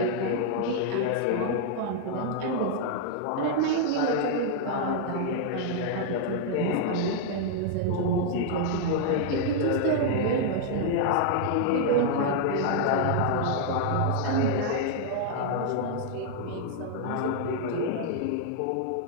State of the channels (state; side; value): different; both; correlation -0.01